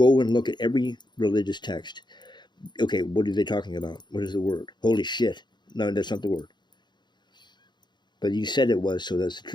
and look at every religious text, okay, what are they talking about? What is the word? Holy shit! No, that's not the word. But you said it was, so that's the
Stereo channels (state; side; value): late; right; 0.21 ms